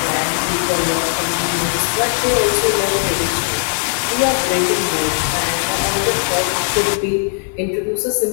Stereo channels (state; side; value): silent; right; 60 dB below the other